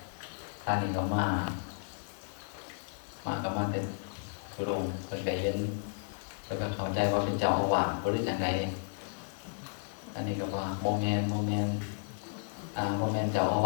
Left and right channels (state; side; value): silent; right; digital silence